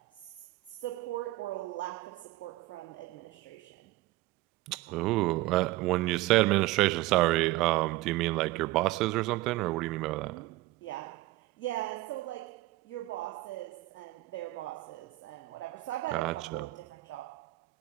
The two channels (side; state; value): left; quieter; 18.6 dB